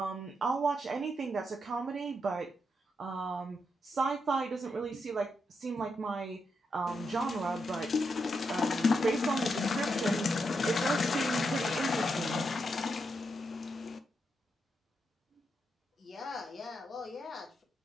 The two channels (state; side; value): normal; both; correlation 0.83